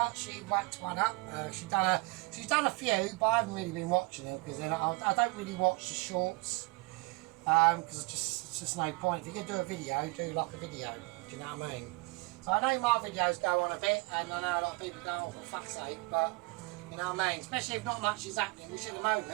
she whacked one up. She's done a few, but I haven't really been watching them because I don't really watch the shorts because it's just no point. If you're going to do a video, do like a video, do you know what I mean? So I know my videos go on a bit, and I know a lot of people go, oh, for fuck's sake, but you know what I mean? Especially if not much is happening, which at the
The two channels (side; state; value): left; quieter; 26.3 dB